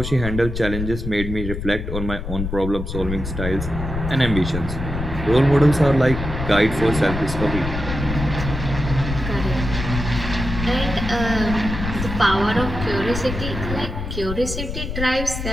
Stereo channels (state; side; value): noise; left; rumble, 5 dB below the sound